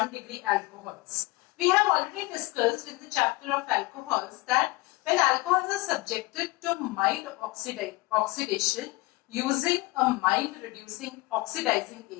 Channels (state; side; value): quieter; right; 21.8 dB